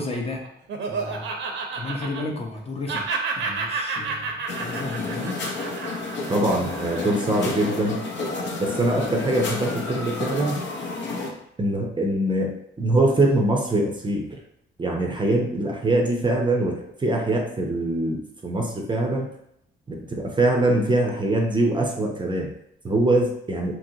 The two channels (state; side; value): normal; both; correlation 0.60